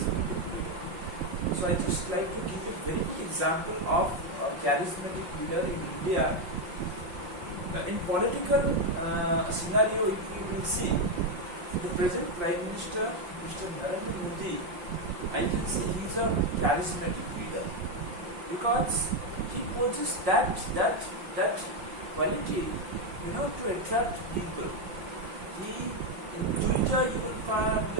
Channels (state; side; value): late; left; 5.6 ms